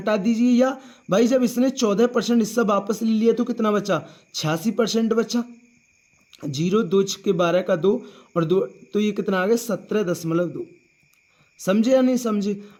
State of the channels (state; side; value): identical; both; correlation 1.00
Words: दीजिए, या भाई जब इसने 14% हिस्सा वापस ले लिया तो कितना बचा? 86% बचा। 0, 2 के 12 का 2 और 2, तो ये कितना आ गया? 17.2। समझे या नहीं समझे?